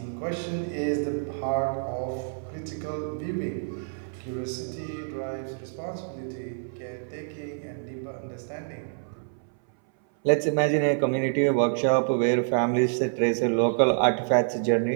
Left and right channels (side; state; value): left; silent; 60 dB below the other